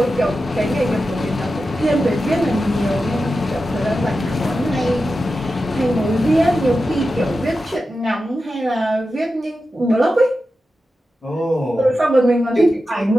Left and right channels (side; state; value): both; normal; correlation 0.91